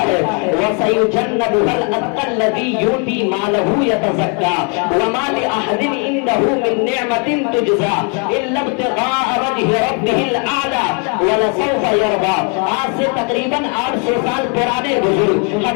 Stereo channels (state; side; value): quieter; right; 37.8 dB